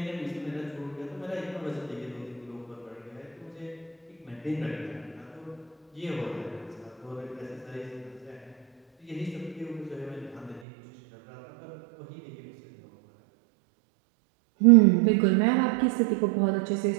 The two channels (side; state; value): left; drops out; at 10.6 s